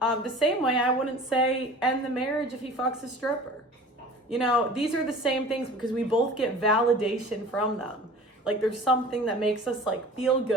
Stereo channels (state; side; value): normal; both; correlation 0.42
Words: same way I wouldn't say end the marriage if he fucks a stripper. These are the same things because we both get validation from them. Like, there's something that makes us feel